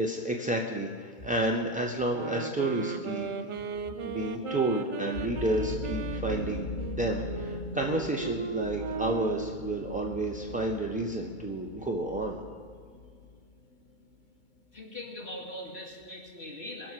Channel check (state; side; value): late; right; 2.2 ms